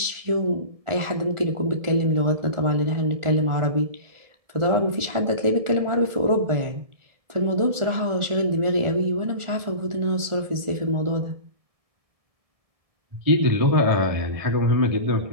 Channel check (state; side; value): late; left; 1.4 ms